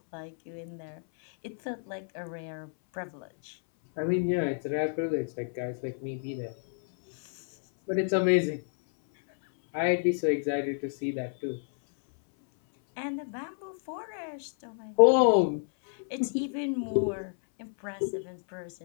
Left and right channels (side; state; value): right; silent; 58 dB below the other